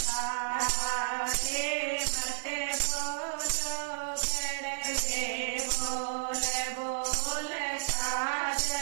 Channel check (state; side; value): silent; left; digital silence